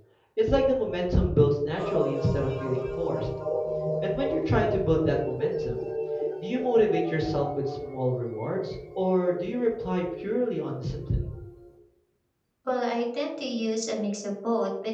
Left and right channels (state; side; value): identical; both; correlation 1.00